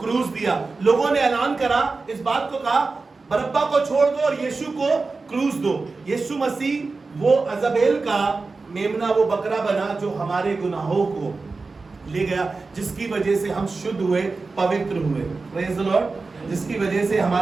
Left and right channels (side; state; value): left; quieter; 3.9 dB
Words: दिया। लोगों ने ऐलान करा, इस बात को कहा बरअब्बा को छोड़ दो और यीशु को क्रूस दो। यीशु मसीह वो अजाबेल का मेमना, वो बकरा बना जो हमारे गुनाहों को ले गया, जिसकी वजह से हम शुद्ध हुए, पवित्र हुए। Praise the Lord. जिसकी वजह से